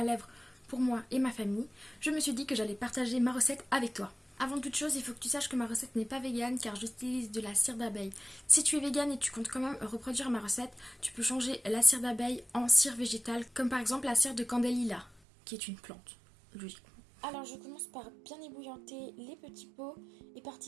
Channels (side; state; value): left; drops out; at 15.2 s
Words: lèvres pour moi et ma famille, je me suis dit que j'allais partager ma recette avec toi. Avant toute chose, il faut que tu saches que ma recette n'est pas végane car j'utilise de la cire d'abeille. Si tu es végane et tu comptes quand même reproduire ma recette, tu peux changer la cire d'abeille en cire végétale, comme par exemple la cire de candélila, qui est une plante, logiquement. Alors je commence par bien ébouillanter les petits pots, et